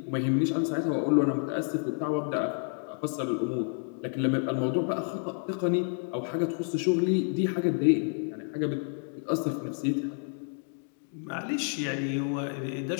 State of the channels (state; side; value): silent; right; 58 dB below the other